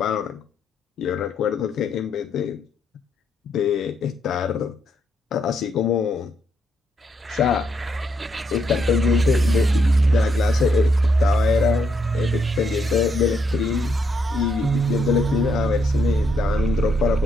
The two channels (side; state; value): both; normal; correlation 0.76